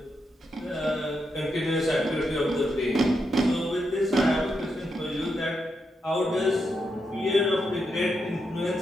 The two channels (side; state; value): both; normal; correlation 0.83